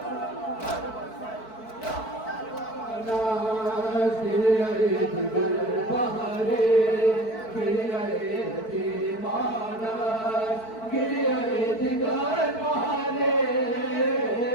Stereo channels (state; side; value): late; right; 4.5 ms